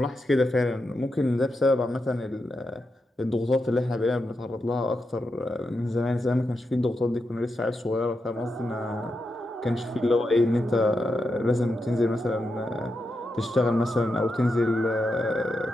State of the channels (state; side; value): normal; both; correlation 0.86